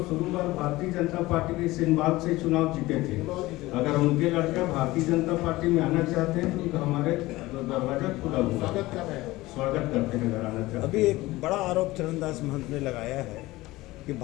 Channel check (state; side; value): quieter; right; 18.9 dB